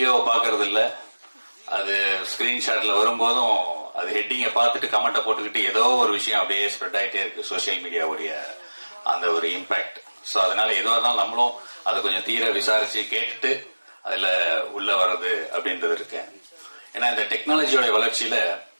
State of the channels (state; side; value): inverted; both; correlation -1.00